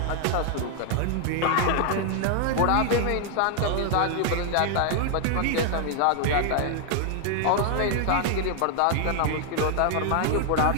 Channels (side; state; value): both; different; correlation 0.00